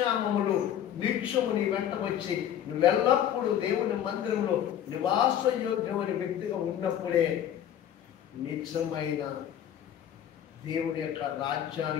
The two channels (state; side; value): quieter; right; 10.2 dB